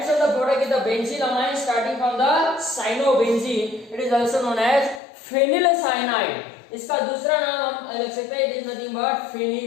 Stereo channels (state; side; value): drops out; right; at 5.0 s